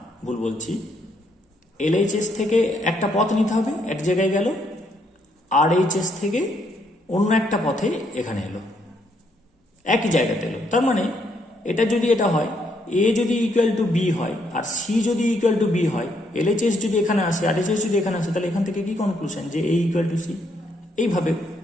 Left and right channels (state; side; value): normal; both; correlation 0.73